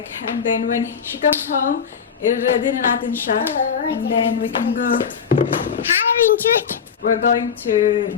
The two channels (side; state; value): right; quieter; 7.0 dB